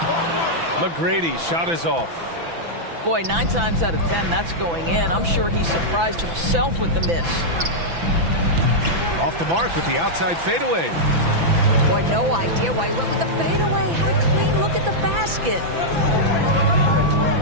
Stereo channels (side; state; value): left; late; 6.0 ms